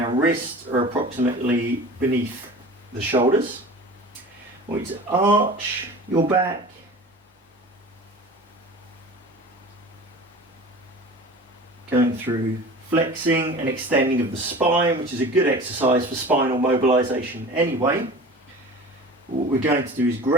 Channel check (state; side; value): normal; both; correlation 0.38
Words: wrists are approximately beneath the shoulders. I want you to arch your back, going through flexing and extending of the spine, which is a good exercise for spinal mobilization anyway. What we're going to do is